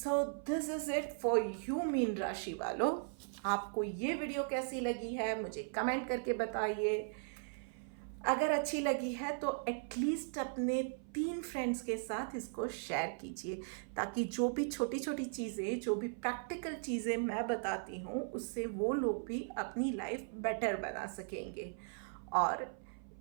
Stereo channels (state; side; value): silent; left; 52 dB below the other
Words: this is it for you mean राशि वालों। आपको ये वीडियो कैसी लगी है मुझे कमेंट करके बताइए। अगर अच्छी लगी है तो एटलीस्ट अपने 3 फ्रेंड्स के साथ इसको शेयर कीजिए, ताकि जो भी छोटी छोटी चीज़ें, जो भी प्रैक्टिकल चीज़ें मैं बताती हूँ, उससे वो लोग भी अपनी लाइफ बेटर बना सकेंगे। और